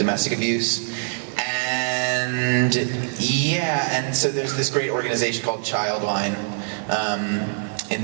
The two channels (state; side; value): silent; left; digital silence